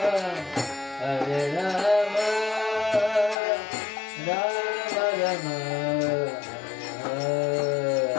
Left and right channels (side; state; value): right; drops out; at 3.4 s